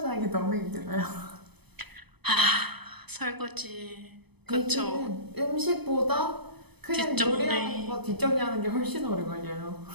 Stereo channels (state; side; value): late; left; 0.98 ms